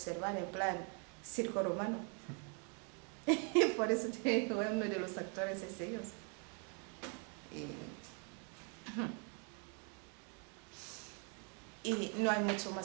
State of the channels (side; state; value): left; quieter; 38.0 dB